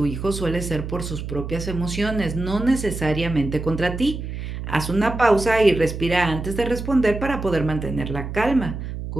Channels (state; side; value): noise; right; hum, 7 dB below the sound